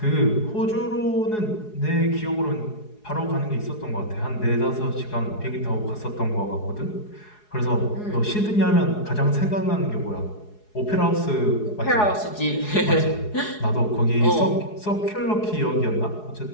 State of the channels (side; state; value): right; late; 4.8 ms